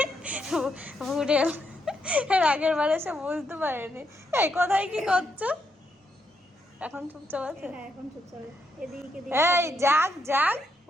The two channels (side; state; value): both; normal; correlation 0.79